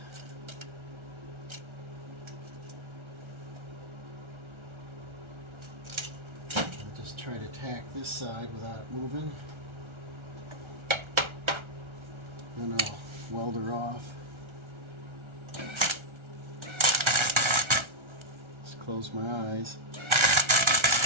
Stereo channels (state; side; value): late; left; 1.3 ms